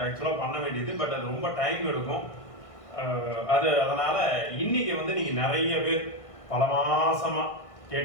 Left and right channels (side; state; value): right; late; 1.6 ms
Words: ஆக்சுவலாக பண்ண வேண்டியது, பட் அது ரொம்ப டைம் எடுக்கும். அதனால் இன்றைக்கி வந்து நீங்கள் நிறைய பேர் பல மாதமாக